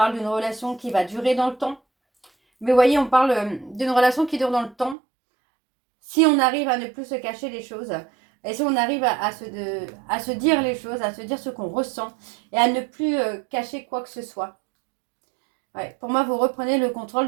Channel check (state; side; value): drops out; left; at 5.0 s